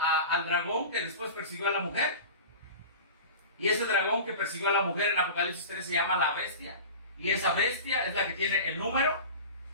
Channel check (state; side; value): inverted; both; correlation -0.34